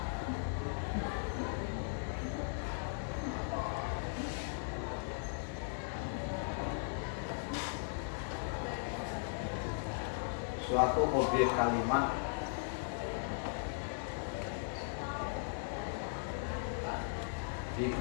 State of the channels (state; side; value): silent; right; digital silence